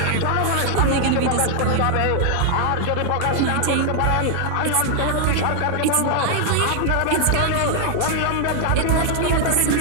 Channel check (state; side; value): different; both; correlation 0.00